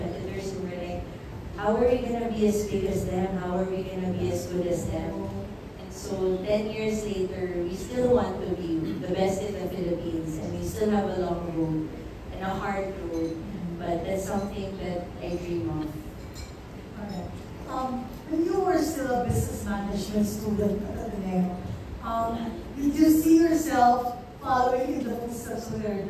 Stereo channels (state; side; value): identical; both; correlation 1.00